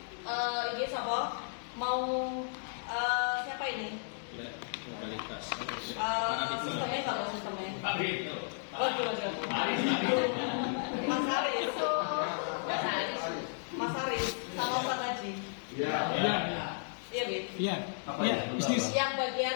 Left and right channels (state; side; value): silent; right; digital silence